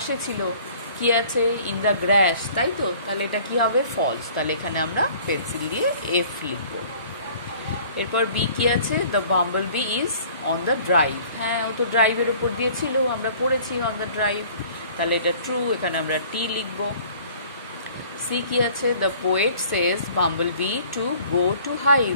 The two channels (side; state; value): both; inverted; correlation -0.51